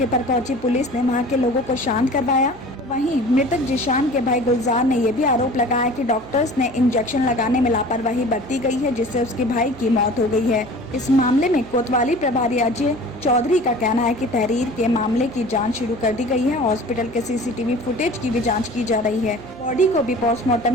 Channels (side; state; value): right; noise; hum, 21 dB below the sound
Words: पर पहुंची पुलिस ने वहां के लोगों को शांत करवाया। वहीं मृतक जिशान के भाई गुलजार ने यह भी आरोप लगाया कि डॉक्टर्स ने इंजेक्शन लगाने में लापरवाही बरती गई है, जिससे उसके भाई की मौत हो गई है। इस मामले में कोतवाली प्रभारी अजय चौधरी का कहना है कि तहरीर के मामले की जांच शुरू कर दी गई है। हॉस्पिटल के सीसीटीवी फुटेज की भी जांच की जा रही है। बॉडी को भी